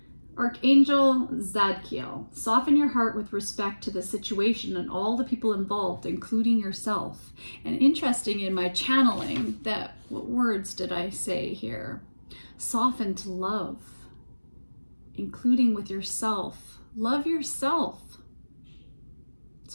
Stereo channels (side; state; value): both; inverted; correlation -1.00